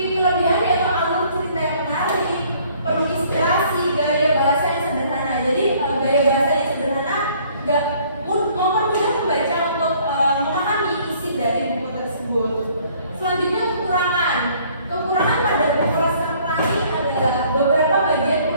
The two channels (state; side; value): inverted; both; correlation -0.59